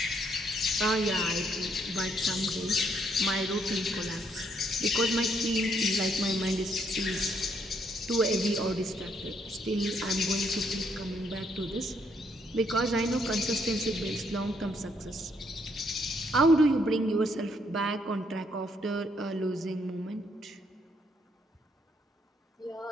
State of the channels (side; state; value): both; normal; correlation 0.71